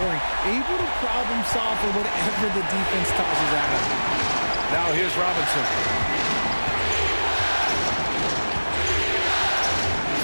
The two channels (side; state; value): both; inverted; correlation -1.00